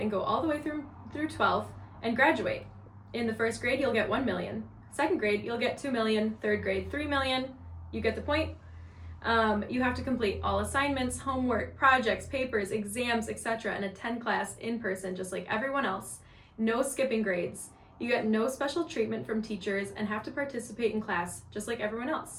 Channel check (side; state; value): both; identical; correlation 1.00